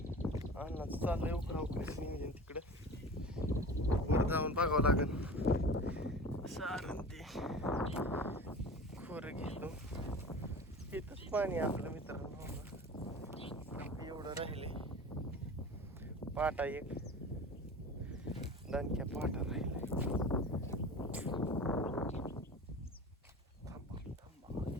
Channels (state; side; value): normal; both; correlation 0.36